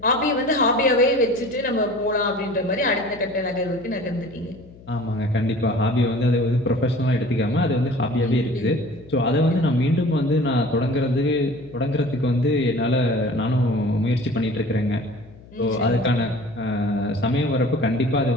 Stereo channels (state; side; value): noise; left; hum, 22 dB below the sound